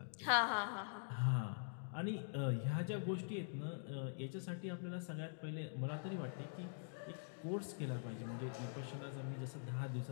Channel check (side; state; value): right; silent; digital silence